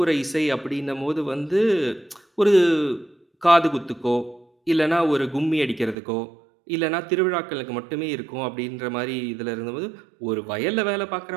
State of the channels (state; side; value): drops out; left; at 6.0 s